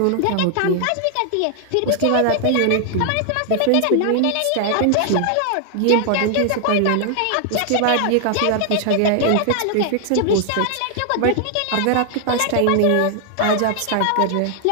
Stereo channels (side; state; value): both; different; correlation 0.00